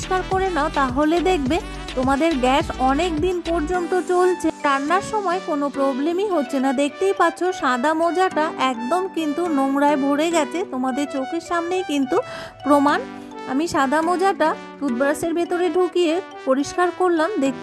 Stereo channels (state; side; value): identical; both; correlation 1.00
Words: করে নাও তাহলে দেখবে তোমাদের গ্যাস অনেক দিন পর্যন্ত চলছে, রান্নার সময় কোনো প্রবলেমই হচ্ছে না। দেখতেই পাচ্ছ সাদা মোজাটা একদম কিন্তু নোংরায় ভরে গেছে, তোমাদের চোখের সামনেই কিন্তু প্রমাণ। আমি সাদা মোজাটা টুথব্রাশের ভেতরে ঢুকিয়ে পরিষ্কার করলাম,